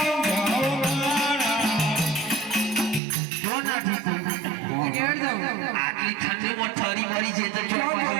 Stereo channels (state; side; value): drops out; left; at 3.0 s